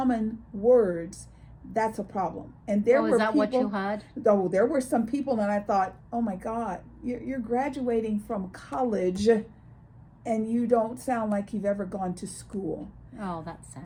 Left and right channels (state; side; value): identical; both; correlation 1.00